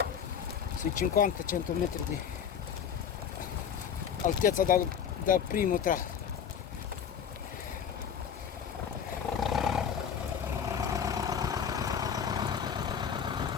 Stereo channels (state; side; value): quieter; right; 7.8 dB